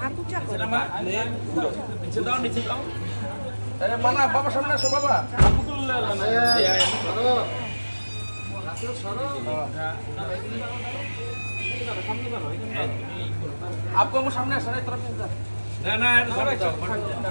ऊंचा करो नीचे दाओ अरे माना बाबा सामने আসো बाबा आपको वो सामने आना तरफ ना ना सबाई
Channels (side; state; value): both; inverted; correlation -1.00